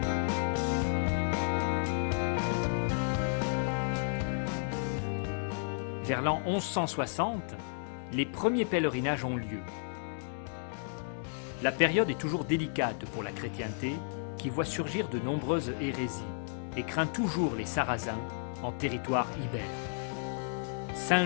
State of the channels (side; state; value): right; silent; digital silence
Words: Vers l'an 1160, les premiers pèlerinages ont lieu. La période est toujours délicate pour la chrétienté, qui voit surgir de nombreuses hérésies et craint toujours les Sarrasins en territoire ibère.